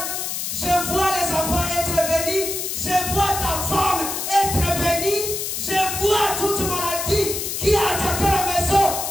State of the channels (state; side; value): noise; left; hiss, 3 dB below the sound